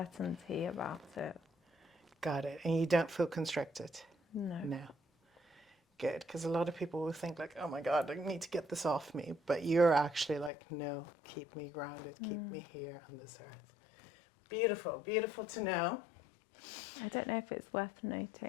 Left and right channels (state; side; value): drops out; right; at 10.5 s